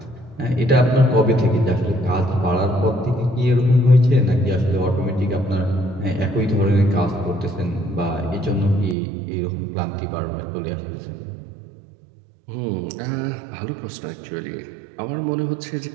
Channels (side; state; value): left; drops out; at 9.0 s